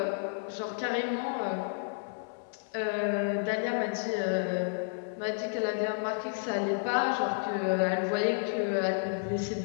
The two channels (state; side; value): silent; right; 57 dB below the other